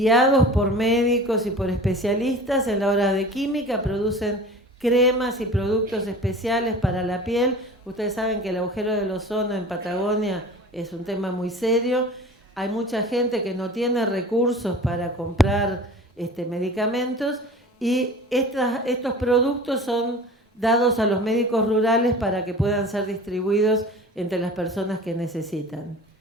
por médicos y por especialistas en la hora de química, producen cremas y productos especiales para la piel. Ustedes saben que el agujero del ozono en Patagonia es un tema muy serio. Hay mucha gente que no tiene recursos para comprar medicamentos, y estos productos son dados a los médicos rurales para que puedan ser distribuidos entre las personas que necesitan.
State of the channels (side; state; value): both; normal; correlation 0.40